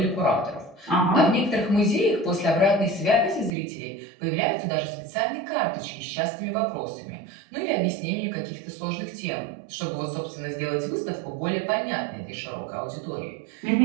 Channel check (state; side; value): drops out; left; at 3.5 s